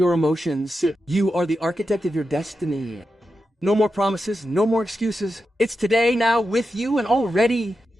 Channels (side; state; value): both; normal; correlation 0.89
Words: emotions. You are the architect of your destiny. No more promises, no more excuses. It's today, now, with you, and already.